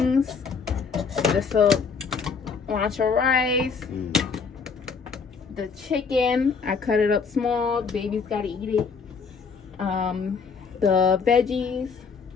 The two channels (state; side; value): quieter; right; 5.4 dB